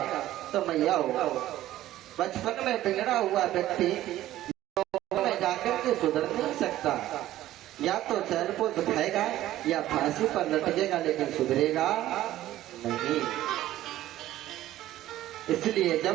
तो मैया हो बचपन में बिगड़ा हुआ व्यक्ति में जाकर के सुधर नहीं सकता, या तो चैन को दिखाएगा या फांसी पर लटकेगा, लेकिन सुधरेगा नहीं। इसलिए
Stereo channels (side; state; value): left; quieter; 14.2 dB